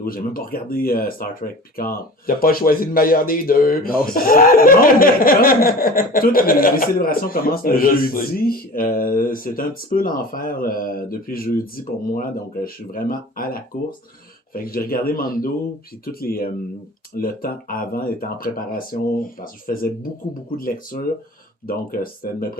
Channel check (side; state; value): both; normal; correlation 0.39